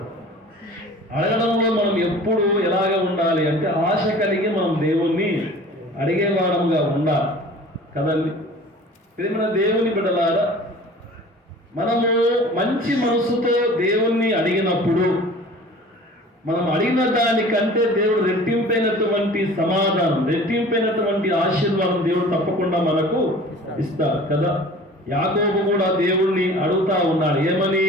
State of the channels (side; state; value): both; normal; correlation 0.44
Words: అడగడంలో మనం ఎప్పుడు ఎలాగ ఉండాలి అంటే ఆశ కలిగి మనం దేవుణ్ణి అడిగేవాడముగా ఉండాలి కదండి. ప్రేమ దేవుని బిడ్డలారా, మనము మంచి మనసుతో దేవుణ్ణి అడిగినప్పుడు మనం అడిగిన దానికంటే దేవుడు రెట్టింపైనటువంటి సమాధానం, రెట్టింపైనటువంటి ఆశీర్వాదం దేవుడు తప్పకుండా మనకు ఇస్తారు కదా. యాకోబు కూడా దేవుణ్ణి అడుగుతా ఉన్నాడు, ఏమని?